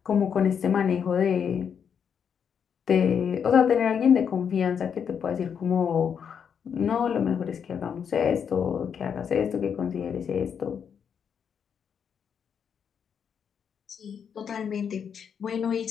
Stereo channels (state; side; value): quieter; right; 7.4 dB